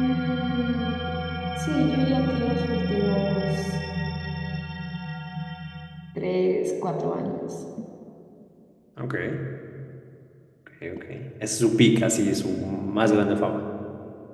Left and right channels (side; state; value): both; identical; correlation 1.00